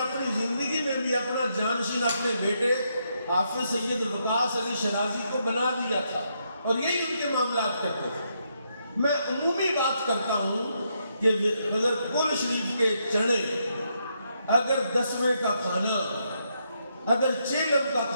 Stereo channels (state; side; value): inverted; both; correlation -0.78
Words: زندگی میں بھی اپنا جانشین اپنے بیٹے حافظ سید وقاص علی شیرازی کو بنا دیا تھا اور یہی ان کے معاملات کرتے تھے. میں عمومی بات کرتا ہوں کہ اگر قل شریف کے چنے، اگر 10ویں کا کھانا، اگر چیلم کا